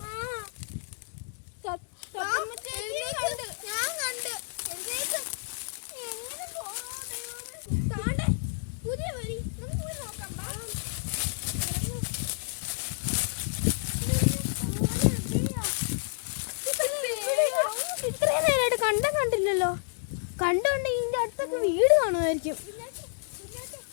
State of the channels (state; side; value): silent; right; digital silence